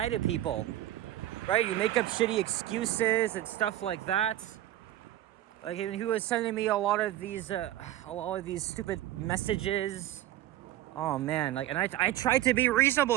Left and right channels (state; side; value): quieter; left; 14.1 dB